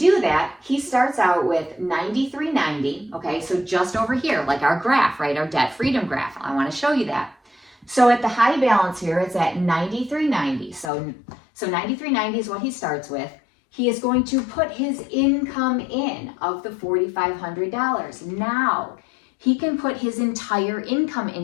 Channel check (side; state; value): right; drops out; at 10.9 s